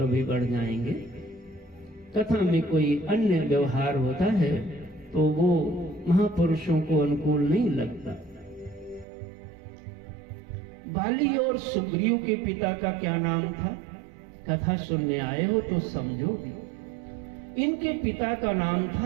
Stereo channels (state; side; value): drops out; left; at 9.1 s